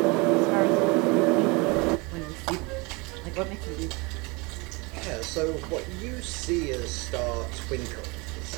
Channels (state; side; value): quieter; left; 27.1 dB